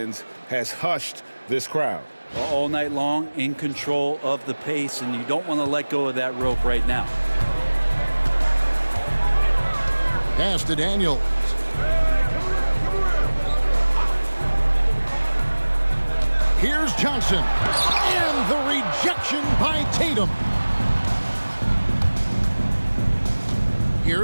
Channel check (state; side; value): inverted; both; correlation -1.00